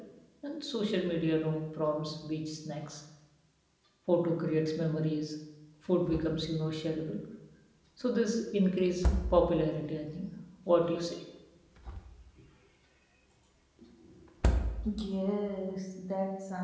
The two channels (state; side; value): identical; both; correlation 1.00